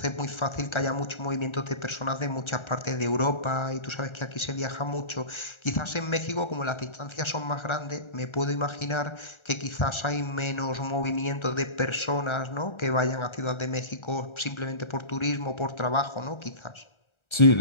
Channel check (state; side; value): late; right; 1.3 ms